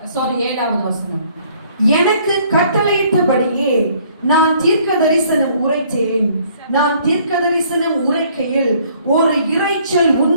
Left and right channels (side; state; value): both; inverted; correlation -0.61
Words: 7வது வசனம். எனக்கு கட்டளையிட்டபடியே நான் தீர்க்க தரிசனம் உரைத்தேன். நான் தீர்க்க தரிசனம் உரைக்கையில் ஒரு இரைச்சல்